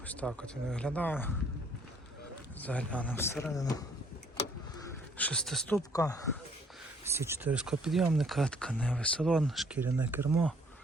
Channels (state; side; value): normal; both; correlation 0.62